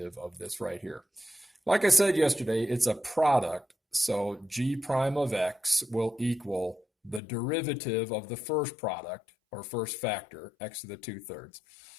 of this right here. Like I said yesterday, it's a product, so g prime of x will equal the derivative of the first product, or first factor, x to the 2/3,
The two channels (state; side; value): drops out; right; at 7.2 s